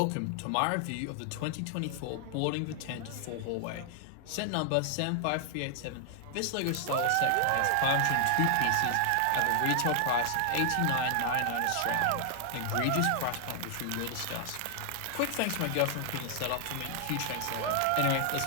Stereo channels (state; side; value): different; both; correlation 0.00